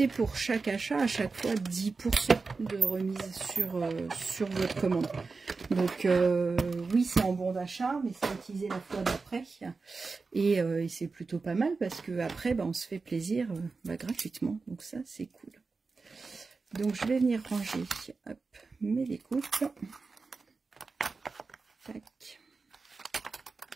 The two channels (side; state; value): left; quieter; 4.2 dB